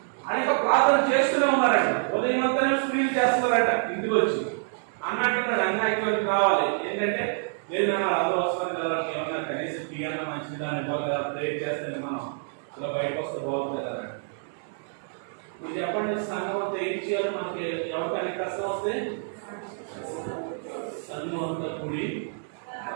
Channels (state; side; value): silent; left; digital silence